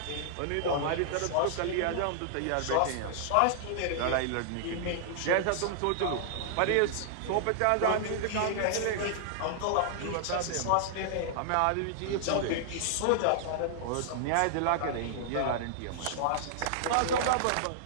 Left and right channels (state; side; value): different; both; correlation -0.01